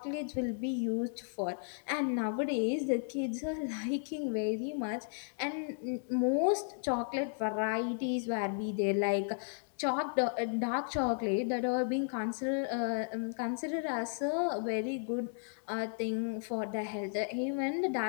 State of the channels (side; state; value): right; silent; digital silence